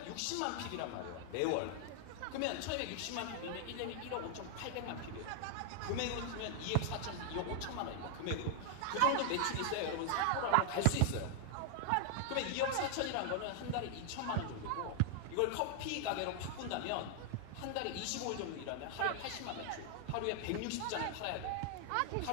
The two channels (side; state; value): both; different; correlation 0.00